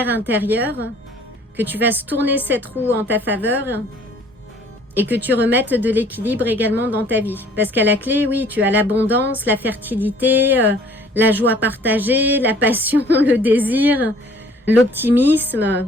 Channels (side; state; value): both; normal; correlation 0.55